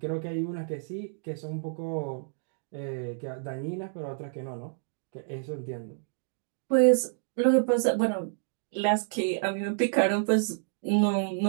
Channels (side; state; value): left; silent; digital silence